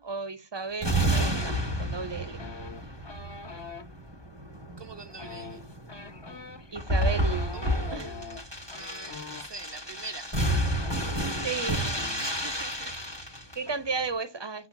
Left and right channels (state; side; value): late; left; 1.2 ms